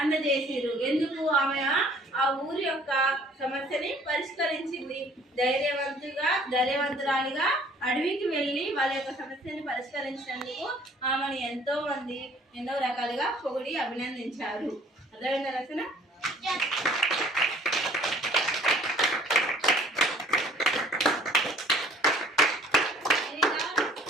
అందజేసిరు. ఎందుకు? ఆమె ఆ ఊరి యొక్క సమస్యని పరిష్కరించింది. ధైర్యవంతురాలిగా అడవికి వెళ్ళి వాళ్ళ యొక్క సమస్యని పరిష్కరించినందుకు ఆమెను ఎంతో మంది ఎన్నో రకాలుగా పొగిడి అభినందించారు. అర్థమైందా రచన?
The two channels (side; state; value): both; normal; correlation 0.55